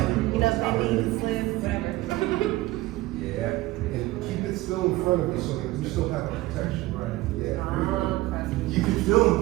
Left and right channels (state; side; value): quieter; left; 18.3 dB